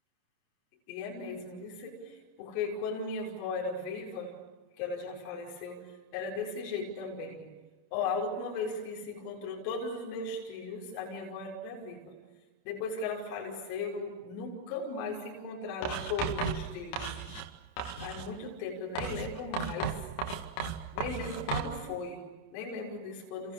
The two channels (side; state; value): right; late; 28 ms